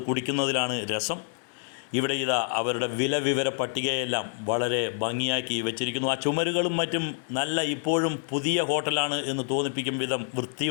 കുടിക്കുന്നതിലാണ് രസം. ഇവിടെ ഇതാ അവരുടെ വില വിവര പട്ടികയെല്ലാം വളരെ ഭംഗിയാക്കി വെച്ചിരിക്കുന്നു. ആ ചുമരുകളും മറ്റും നല്ല ഇപ്പോഴും പുതിയ ഹോട്ടലാണ് എന്ന് തോന്നിപ്പിക്കും വിധം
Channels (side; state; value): right; silent; 60 dB below the other